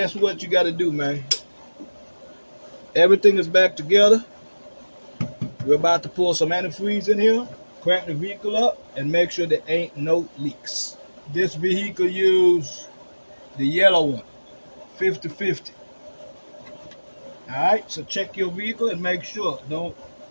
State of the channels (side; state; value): both; inverted; correlation -1.00